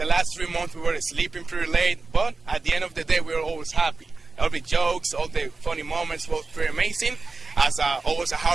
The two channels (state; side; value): quieter; left; 3.8 dB